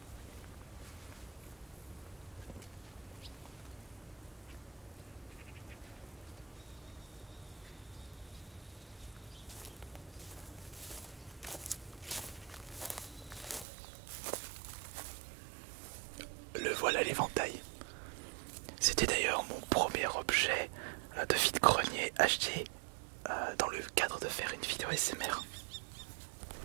Le voilà l'éventail. C'était d'ailleurs mon premier objet de vide-grenier acheté dans le cadre de faire une vidéo ASMR.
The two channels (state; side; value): drops out; left; at 13.7 s